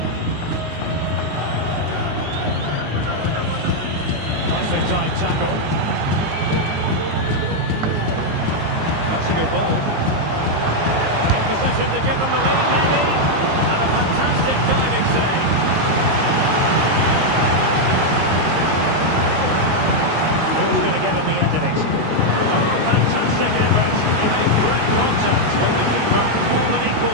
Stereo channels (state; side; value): late; left; 19 ms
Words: Nicely timed tackle. That's a good ball. In possession to give them the lead, maybe. And a fantastic diving save. Who's going to get on the end of it? Oh, fantastic effort. He made great contact, but the keeper more than equal